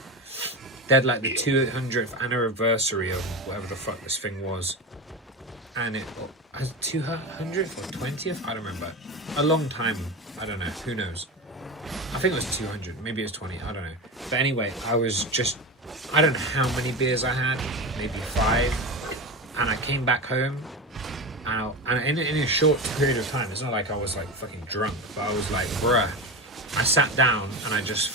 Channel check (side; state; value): both; normal; correlation 0.23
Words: They had like the 200th anniversary of whatever the fuck this thing was, and it has 200th or 20th. I don't remember. A long time. I don't know. Who knows? I think it was 200. Maybe it was 20. I don't know. But anyway, I was just, I don't know how many beers I had. Maybe 5. And I came back home. And in a short period of time, it's not like I was like fucking drunk, but I was like, bruh. I sat down and I just